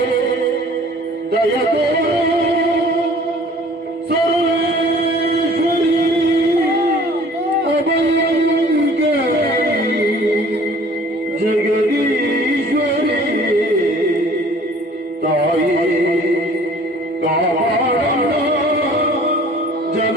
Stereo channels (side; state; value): both; normal; correlation 0.51